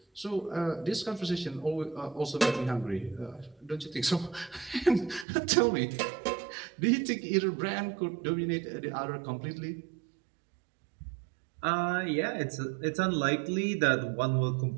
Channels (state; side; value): drops out; left; at 5.2 s